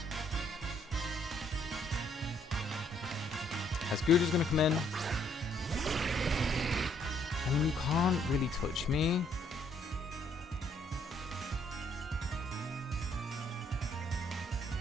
As Guda's gonna come in. I mean, you can't really touch me.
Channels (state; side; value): normal; both; correlation 0.67